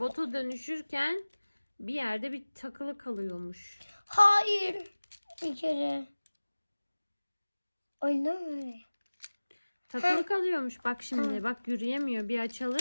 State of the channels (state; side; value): inverted; both; correlation -1.00